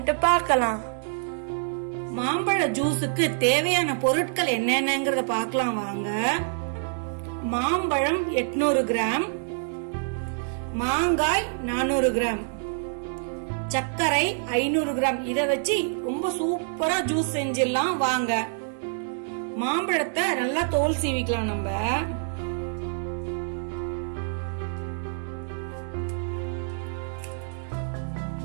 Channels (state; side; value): silent; left; digital silence